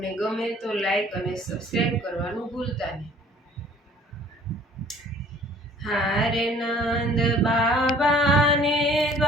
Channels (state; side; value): normal; both; correlation 0.54